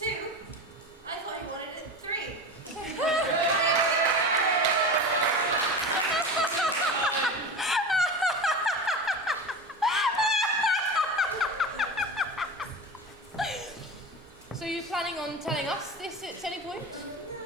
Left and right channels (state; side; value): normal; both; correlation 0.28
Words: I thought he wanted it 3. So you're planning on telling us this at any point?